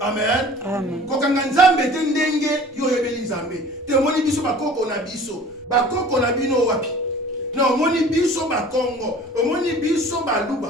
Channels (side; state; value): both; normal; correlation 0.46